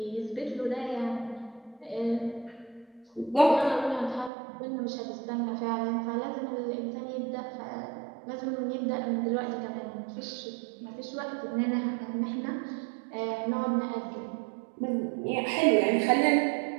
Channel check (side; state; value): left; drops out; at 4.3 s